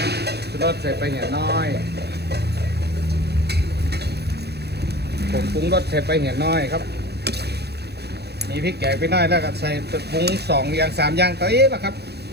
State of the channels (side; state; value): left; late; 0.48 ms